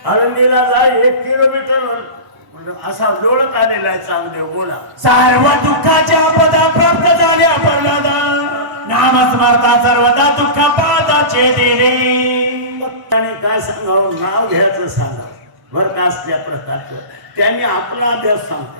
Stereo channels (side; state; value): left; late; 1.1 ms